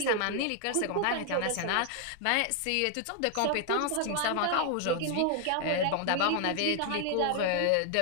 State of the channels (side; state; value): both; different; correlation 0.00